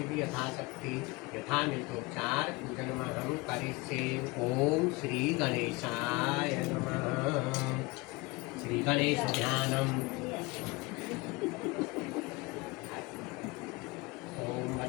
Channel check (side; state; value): right; quieter; 24.1 dB